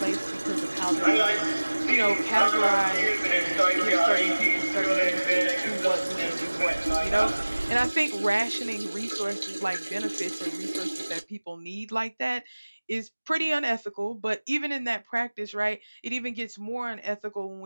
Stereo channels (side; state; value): both; inverted; correlation -1.00